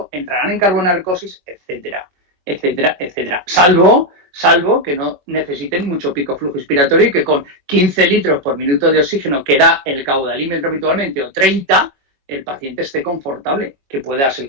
entrarán en carbonarcosis, etcétera, etcétera, etcétera. Salvo salvo que no necesiten mucho pico flujo inspiratorio y que con 15 litros por minuto de oxígeno que da el caudalímetro habitualmente o 30, el paciente esté confortable, que puede darse el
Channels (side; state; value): left; late; 22 ms